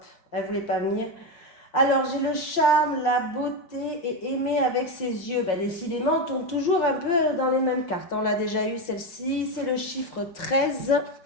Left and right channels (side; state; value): right; late; 5.6 ms